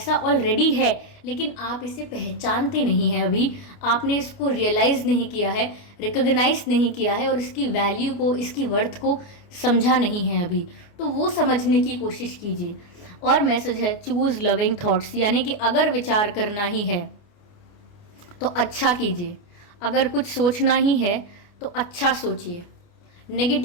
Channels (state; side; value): late; right; 29 ms